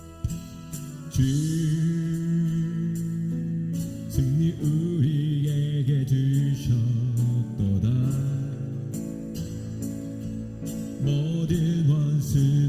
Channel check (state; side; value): identical; both; correlation 1.00